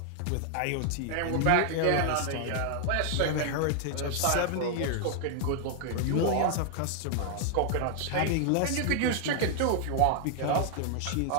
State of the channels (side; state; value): both; different; correlation 0.00